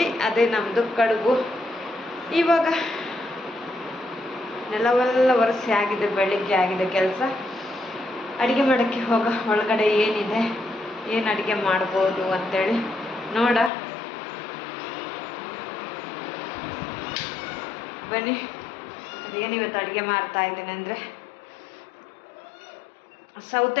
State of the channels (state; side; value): drops out; right; at 13.7 s